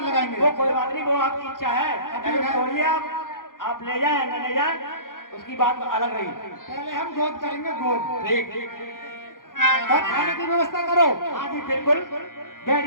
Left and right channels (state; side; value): late; right; 0.90 ms